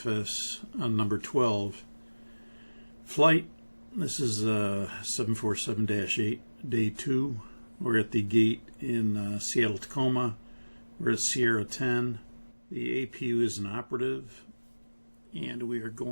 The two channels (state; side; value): inverted; both; correlation -1.00